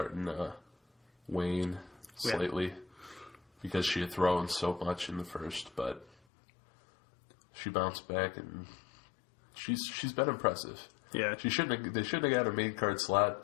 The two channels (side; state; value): right; drops out; at 6.2 s